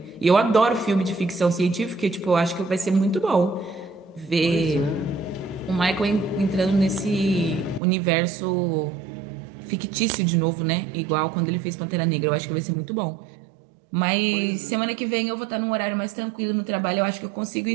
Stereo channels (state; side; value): drops out; left; at 7.8 s